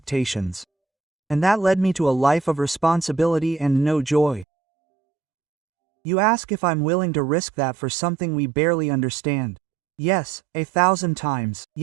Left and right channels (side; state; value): left; drops out; at 4.5 s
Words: And that led me to a life of responsibility and no joy. You ask if I'm willing to risk that for something we barely understand. Yes, 1,000 times,